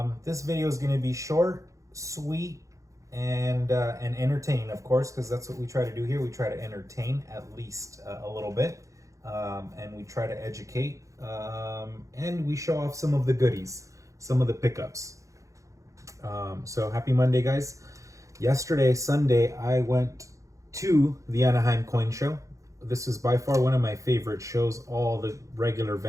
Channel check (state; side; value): late; left; 0.15 ms